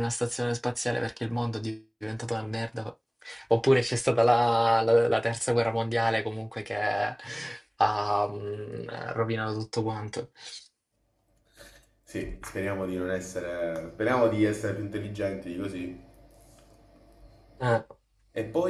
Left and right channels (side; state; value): both; identical; correlation 1.00